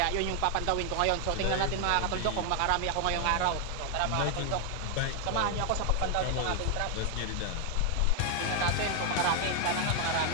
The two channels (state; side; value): different; both; correlation 0.00